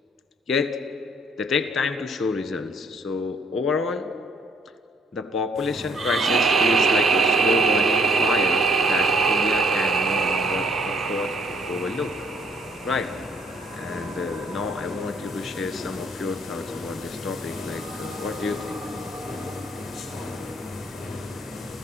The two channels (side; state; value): both; normal; correlation 0.64